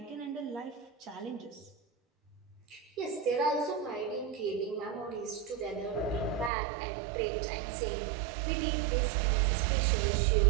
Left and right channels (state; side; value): drops out; left; at 6.5 s